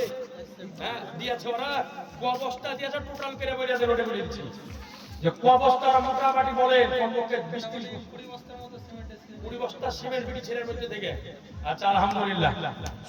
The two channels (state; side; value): identical; both; correlation 1.00